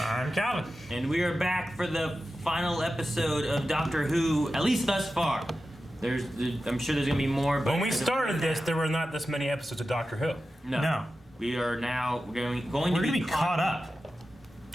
I'm Calvin. And we are back for the final episode of Doctor Who, at least thus far. I'm sure there's gonna be more. But when we started this, there were not this many episodes of Doctor Who. No. We are now going to be caught up.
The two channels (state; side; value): normal; both; correlation 0.93